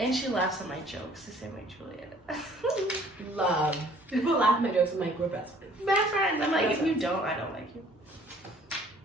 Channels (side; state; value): both; normal; correlation 0.56